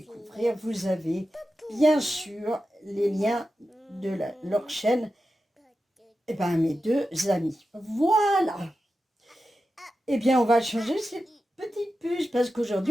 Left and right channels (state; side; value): normal; both; correlation 0.91